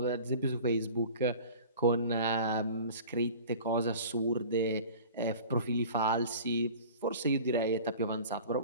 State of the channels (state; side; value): inverted; both; correlation -0.41